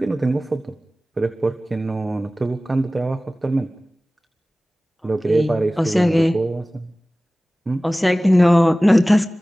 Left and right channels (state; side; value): normal; both; correlation 0.97